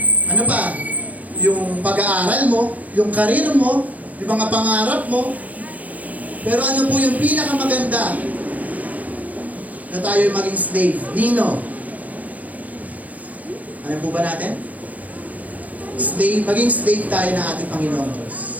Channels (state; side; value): late; left; 0.076 ms